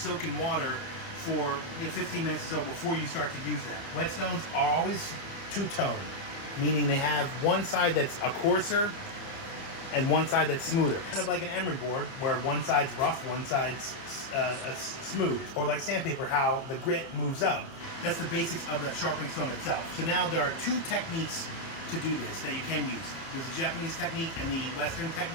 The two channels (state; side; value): late; right; 30 ms